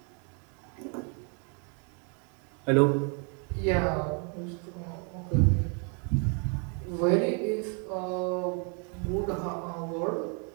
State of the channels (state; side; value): quieter; left; 38.7 dB